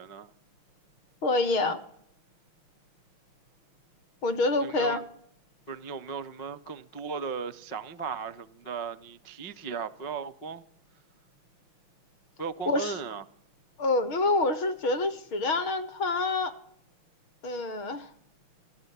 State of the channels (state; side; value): late; right; 6.3 ms